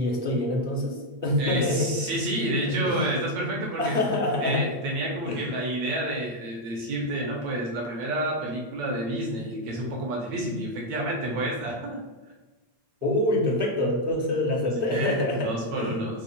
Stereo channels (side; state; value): left; late; 8.9 ms